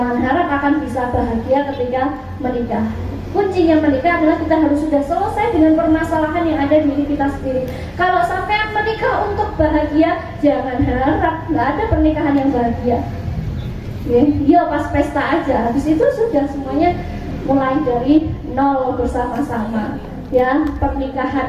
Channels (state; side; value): identical; both; correlation 1.00